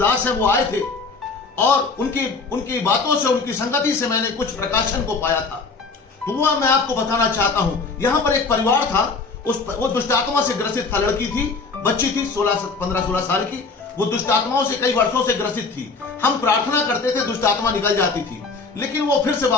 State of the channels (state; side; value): quieter; right; 4.2 dB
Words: हैं, वो आए थे और उनकी बातों से, उनकी संगति से मैंने कुछ प्रकाशन को पाया था। तो वो मैं आपको बताना चाहता हूं। यहां पर एक परिवार था, वो दुष्ट आत्मा से ग्रसित था। लड़की थी, बच्ची थी 15-16 साल की। वो दुष्ट आत्माओं से कई वर्षों से ग्रसित थी। हम प्रार्थना करते थे, दुष्ट आत्मा निकल जाती थी, लेकिन वो फिर से